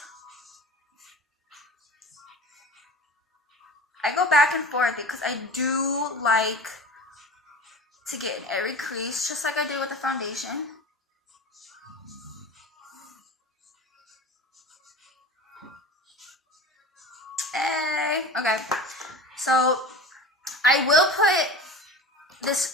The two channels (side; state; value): both; normal; correlation 0.35